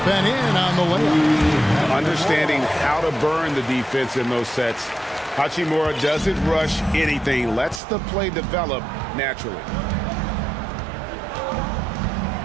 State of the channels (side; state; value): left; drops out; at 7.8 s